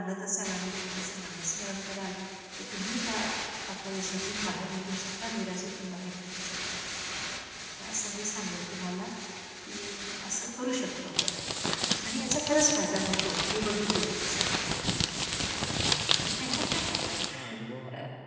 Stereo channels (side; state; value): both; identical; correlation 1.00